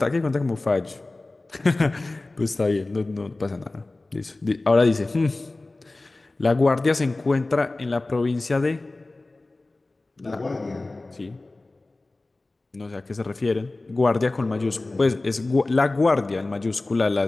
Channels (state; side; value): quieter; right; 3.1 dB